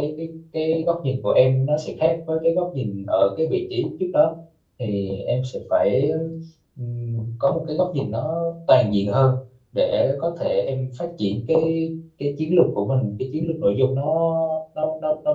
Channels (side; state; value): both; identical; correlation 1.00